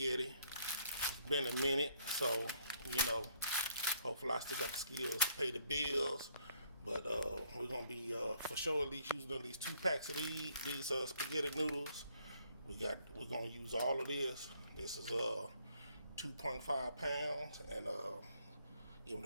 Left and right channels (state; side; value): inverted; both; correlation -0.66